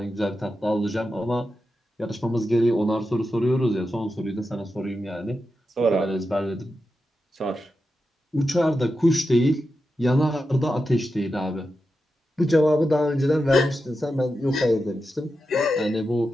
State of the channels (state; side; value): normal; both; correlation 0.89